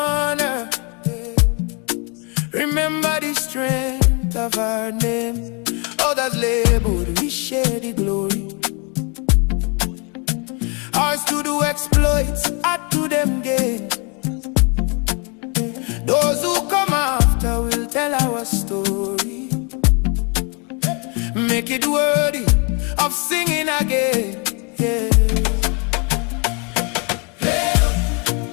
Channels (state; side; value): quieter; right; 33.8 dB